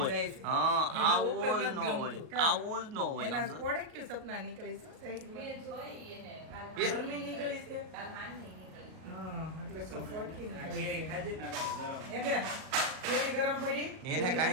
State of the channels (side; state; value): left; late; 38 ms